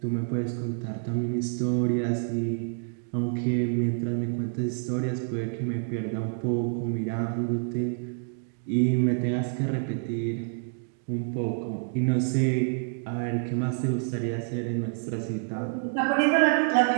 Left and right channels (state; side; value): silent; left; digital silence